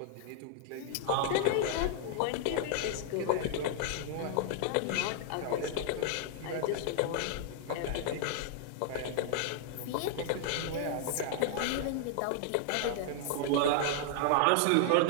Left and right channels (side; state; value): both; different; correlation -0.01